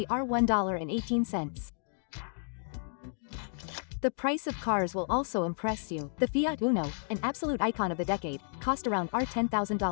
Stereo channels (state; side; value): silent; right; 57 dB below the other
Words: $1.18. The price of cars will also impress you. The Fiat Uno, an absolute icon of the decade, cost around